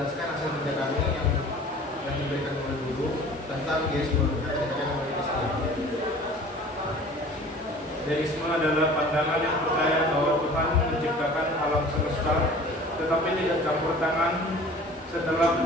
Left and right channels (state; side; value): normal; both; correlation 0.45